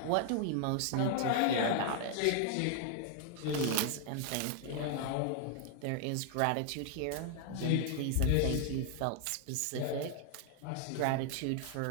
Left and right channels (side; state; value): both; different; correlation 0.00